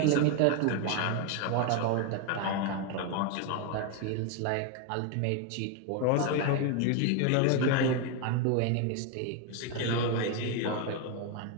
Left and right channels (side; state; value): both; different; correlation 0.01